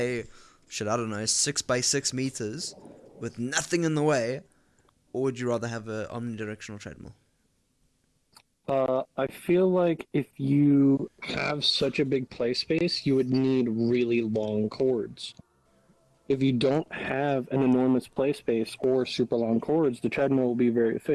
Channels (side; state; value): both; identical; correlation 1.00